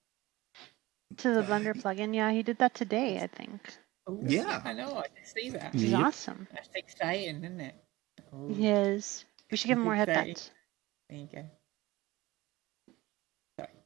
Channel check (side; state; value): left; quieter; 19.5 dB